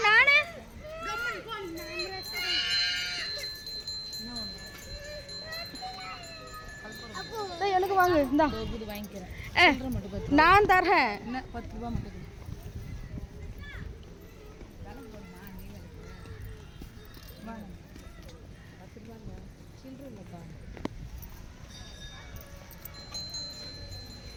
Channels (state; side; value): identical; both; correlation 1.00